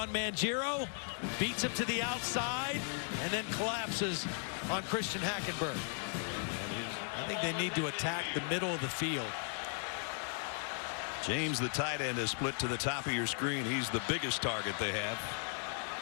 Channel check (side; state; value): right; silent; 53 dB below the other